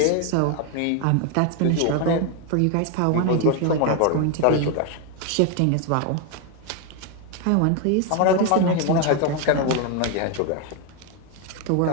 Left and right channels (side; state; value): both; different; correlation 0.01